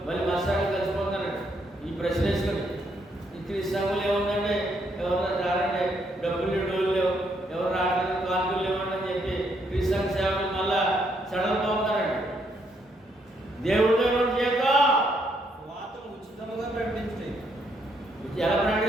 మళ్ళీ మా సంఘం కలిసిపోతారండి. ఈ ప్రశ్న వేసుకొని ఈ క్రీస్తు సంఘంలో ఏముందండి, ఎవరన్నా రారండి, డబ్బులు డోలు లేవు, ఎవరు రావడానికి కానుకలు లేవండి అని చెప్పి క్రీస్తు సంఘ సేవకులు మళ్ళా సడలిపోతారండి. దేవుడితో జీతం వార్తను ఉచితంగా ప్రకటించండి. ఎలా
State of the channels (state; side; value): normal; both; correlation 0.74